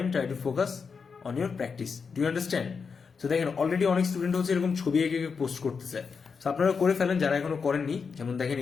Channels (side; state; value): right; quieter; 5.5 dB